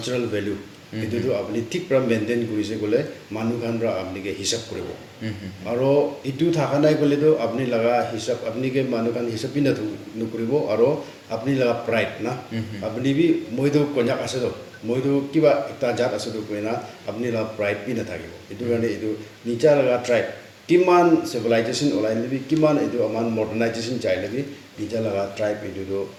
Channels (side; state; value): both; identical; correlation 1.00